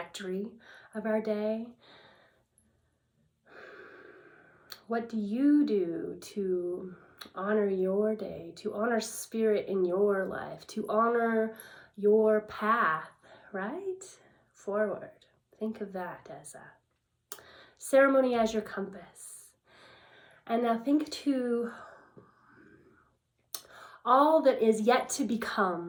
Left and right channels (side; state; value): both; identical; correlation 1.00